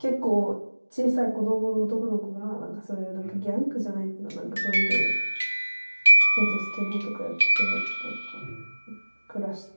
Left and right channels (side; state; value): both; inverted; correlation -1.00